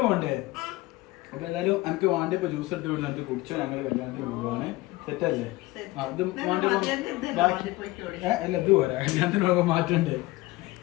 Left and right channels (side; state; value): right; quieter; 19.9 dB